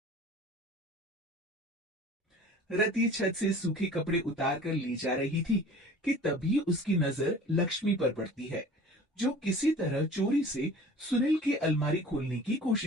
रति छत से सूखे कपड़े उतार कर ले जा रही थी कि तभी उसकी नजर लक्ष्मी पर पड़ती है, जो किसी तरह चोरी से सुनील की अलमारी खोलने की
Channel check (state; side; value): normal; both; correlation 0.45